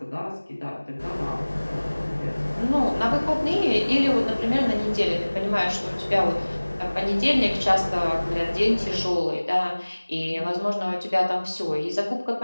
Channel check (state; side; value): inverted; both; correlation -1.00